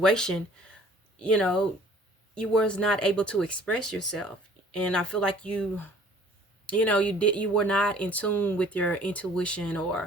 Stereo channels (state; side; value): normal; both; correlation 0.53